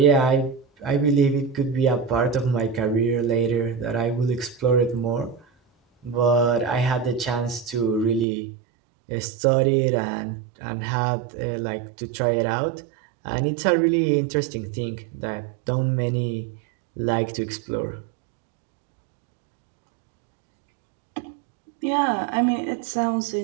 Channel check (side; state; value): left; drops out; at 8.2 s